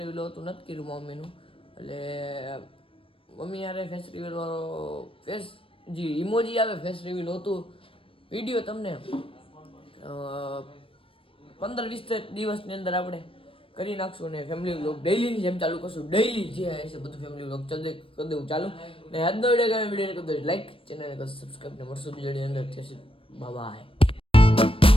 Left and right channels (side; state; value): right; late; 0.26 ms